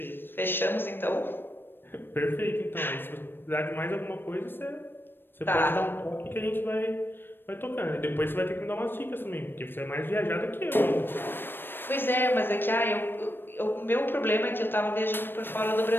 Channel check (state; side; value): late; right; 0.098 ms